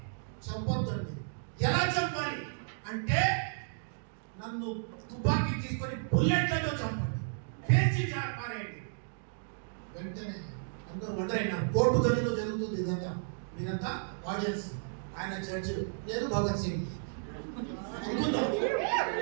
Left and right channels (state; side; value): silent; left; digital silence